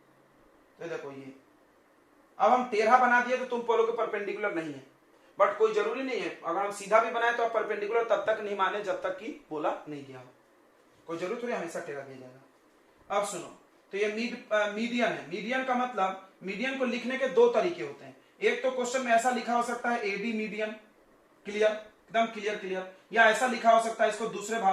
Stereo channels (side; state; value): both; identical; correlation 1.00